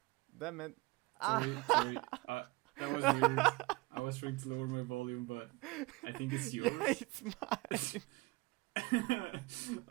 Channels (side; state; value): left; quieter; 23.6 dB